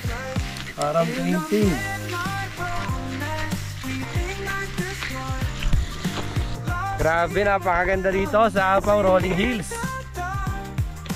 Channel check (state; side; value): identical; both; correlation 1.00